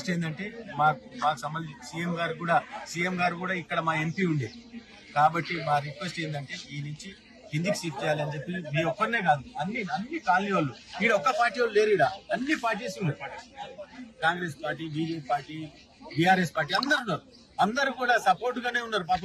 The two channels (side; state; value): both; identical; correlation 1.00